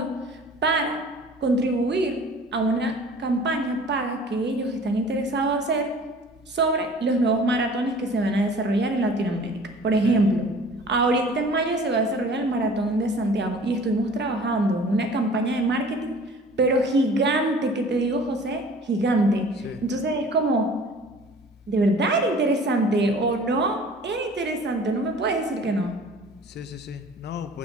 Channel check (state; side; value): normal; both; correlation 0.47